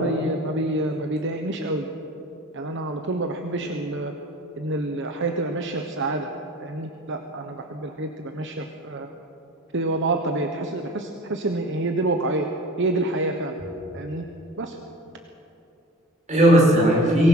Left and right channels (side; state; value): both; normal; correlation 0.40